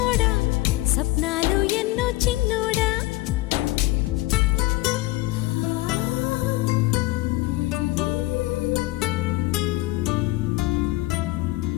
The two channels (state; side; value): quieter; right; 19.5 dB